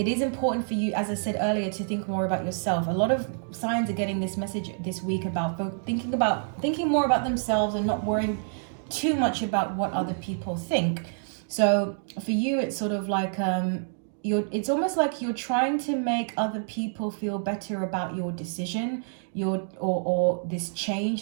is important for you, as I said earlier, to think more about yourself. A lot of signs are getting this message this week about thinking more about themselves and not worrying too much about what other people think. So for you, it's sort of like it's almost like you're trying to make other people feel better about your decision, or this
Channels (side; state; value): left; silent; digital silence